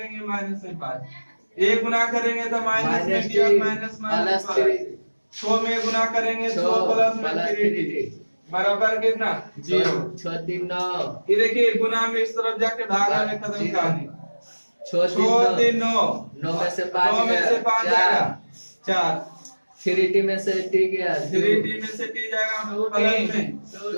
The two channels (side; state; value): both; inverted; correlation -1.00